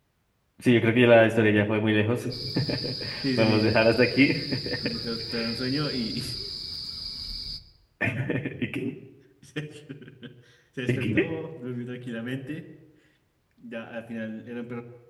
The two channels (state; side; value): identical; both; correlation 1.00